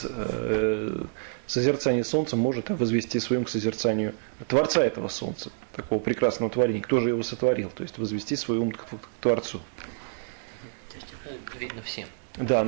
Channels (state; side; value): silent; left; digital silence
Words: созерцания солнца может возвести своим к созерцанию Творца этого солнца, такого прекрасного творения, кто же его сотворил, то есть возвести свой ум к Творцу. То есть это видно всем. Да,